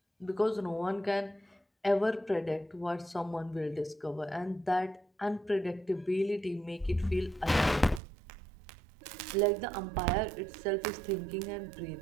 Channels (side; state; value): left; drops out; at 8.0 s